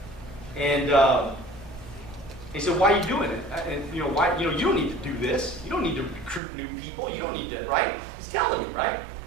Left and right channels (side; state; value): left; drops out; at 6.4 s